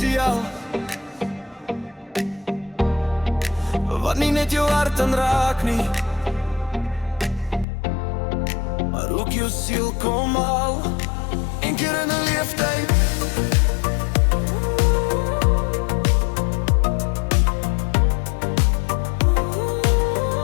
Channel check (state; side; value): drops out; right; at 7.7 s